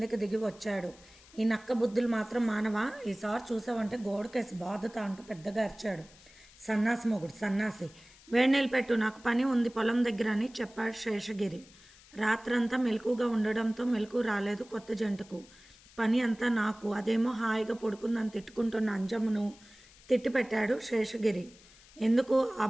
దిగి వచ్చాడు. ఈ నక్క బుద్ధులు మాత్రం మానవా, ఈసారి చూసావంటే గోడకేసి బాధత అంటూ పెద్దగా అరిచాడు. సన్నాసి మొగుడు సన్నాసి, వేడినీళ్ళు పెట్టు, నాకు పని ఉంది పొలం దగ్గర అని చెప్పాడు శేషగిరి. రాత్రంతా మెలకుగా ఉండడంతో మెలకు రాలేదు కొత్త జంటకు. పని అంతా నాకు, అదేమో హాయిగా పడుకుందని తిట్టుకుంటున్న అంజమ్మను తిట్టిపెట్టాడు శేషగిరి. ఎందుకు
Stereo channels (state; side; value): noise; left; hiss, 24 dB below the sound